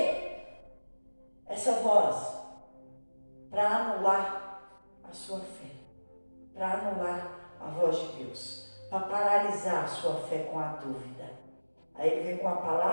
Essa voz, para anular a sua fé, para anular a voz de Deus, para paralisar a sua fé com a dúvida. Aí ele vem com a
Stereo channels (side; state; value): both; inverted; correlation -1.00